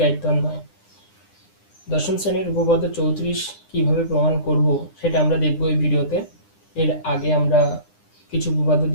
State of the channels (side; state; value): right; late; 9.9 ms